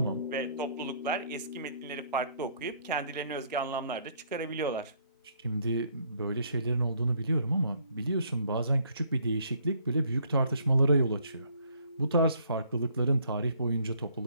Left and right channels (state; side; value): inverted; both; correlation -0.64